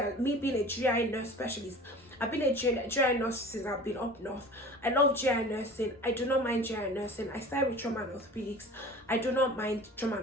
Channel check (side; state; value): both; normal; correlation 0.41